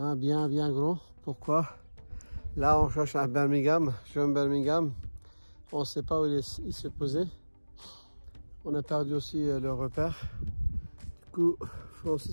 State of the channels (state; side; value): inverted; both; correlation -1.00